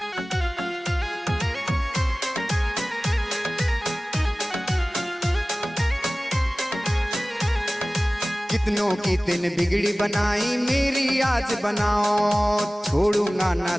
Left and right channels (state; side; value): normal; both; correlation 0.97